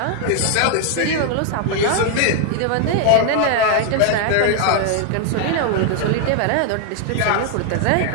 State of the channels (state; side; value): different; both; correlation 0.00